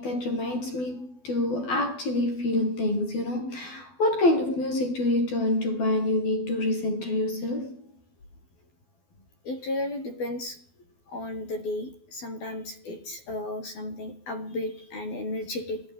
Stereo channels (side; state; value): right; late; 12 ms